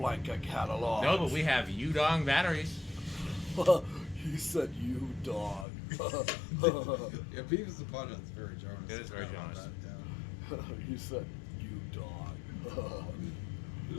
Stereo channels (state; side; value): drops out; right; at 5.7 s